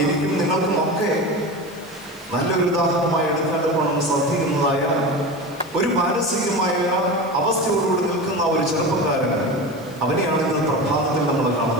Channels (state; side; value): noise; left; hiss, 25 dB below the sound